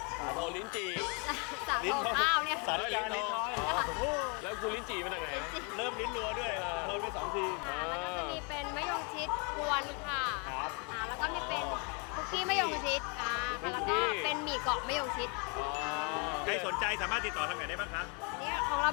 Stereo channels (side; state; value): right; quieter; 34.3 dB